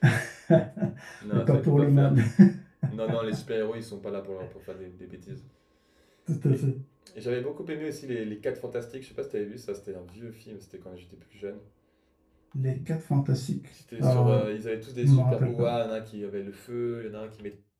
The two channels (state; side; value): identical; both; correlation 1.00